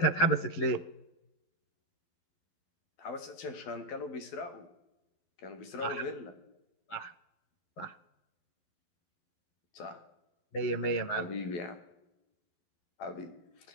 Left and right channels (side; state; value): right; late; 12 ms